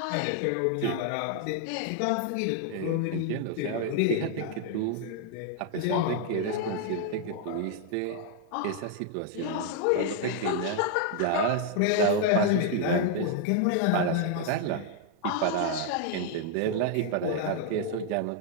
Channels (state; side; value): different; both; correlation 0.00